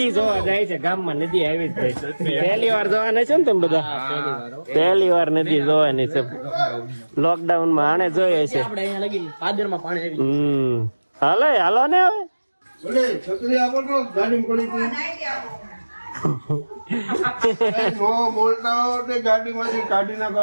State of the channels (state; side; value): inverted; both; correlation -1.00